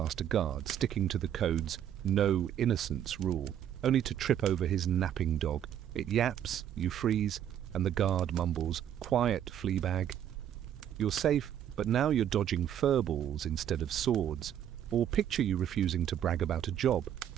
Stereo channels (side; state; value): left; quieter; 10.1 dB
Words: a guard, sticking to the code's no innocence rule, only to trip over his napping dog. It yaps, you freeze, and the guard mumbles, "Quiet, fleabag." You're safe, but now you're dodging furballs instead of swords. Or picture you refusing to brag about a job,